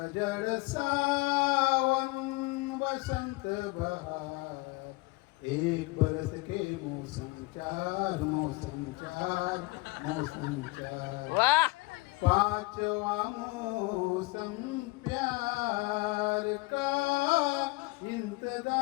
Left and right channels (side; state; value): right; quieter; 23.3 dB